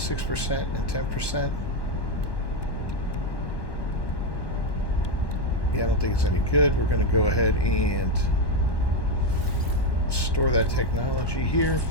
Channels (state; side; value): late; right; 1.1 ms